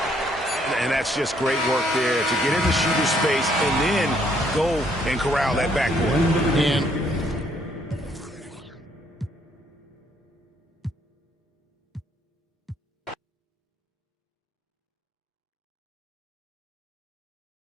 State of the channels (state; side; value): normal; both; correlation 0.68